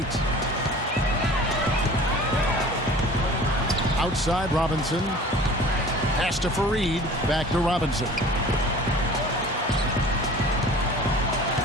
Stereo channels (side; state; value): both; normal; correlation 0.44